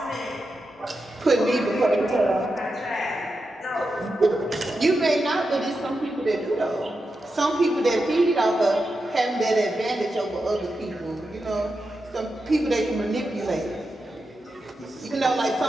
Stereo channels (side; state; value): both; normal; correlation 0.88